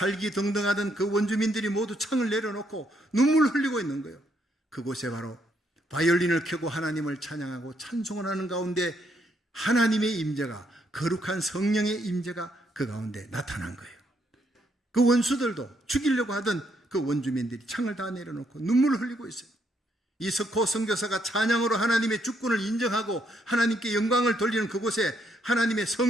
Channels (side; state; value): both; normal; correlation 0.73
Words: 등등하던 그 원주민들이 모두 창을 내려놓고 눈물 흘리고 있는 거예요. 그곳에 바로 바이올린을 켜고 하나님을 찬양하고 찬송을 하는 가운데 하나님의 임재가 거룩한 성령의 임재가 그 가운데 나타난 거예요. 그 원수들도 죽이려고 하던 그 원주민들이 창을 다 내려놓고 눈물을 흘리고 있어요. 이석호 선교사가 찬양으로 하나님의 주권을 인정하고 하나님께 영광을 돌리는 그곳에 하나님의